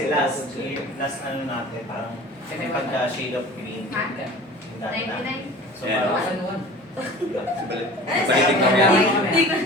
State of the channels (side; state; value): both; normal; correlation 0.41